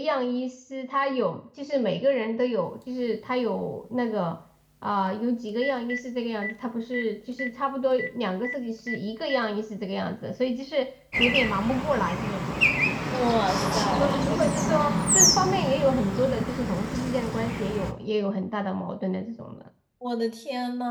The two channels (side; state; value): both; identical; correlation 1.00